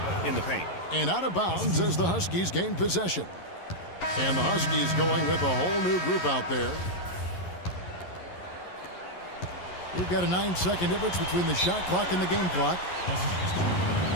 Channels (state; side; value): late; right; 11 ms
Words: in the paint. And out of bounds as the Huskies gain possession. And the Huskies going with a whole new group out there. We've got a 9-second difference between the shot clock and the game clock.